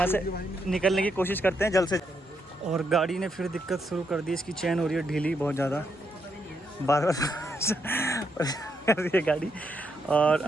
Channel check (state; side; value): normal; both; correlation 0.78